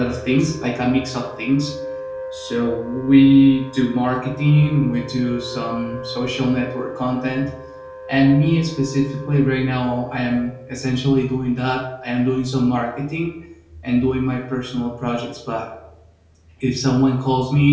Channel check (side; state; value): both; identical; correlation 1.00